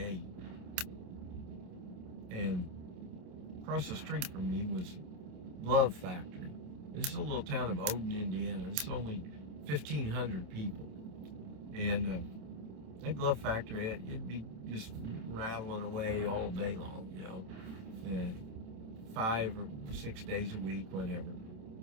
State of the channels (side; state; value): left; late; 27 ms